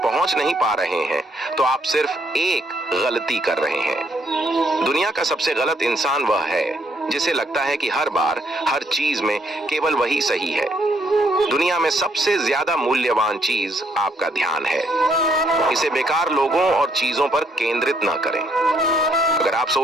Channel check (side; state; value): both; normal; correlation 0.71